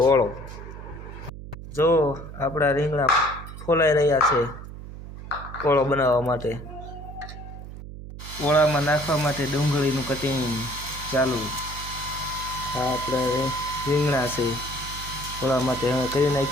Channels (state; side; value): noise; right; hum, 12 dB below the sound